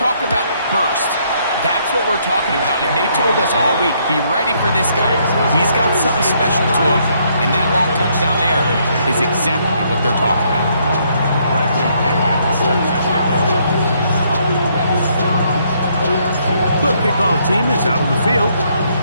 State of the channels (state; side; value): inverted; both; correlation -0.70